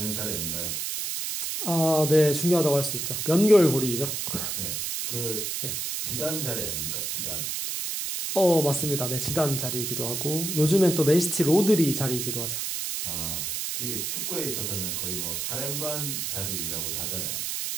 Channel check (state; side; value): noise; right; hiss, 2 dB below the sound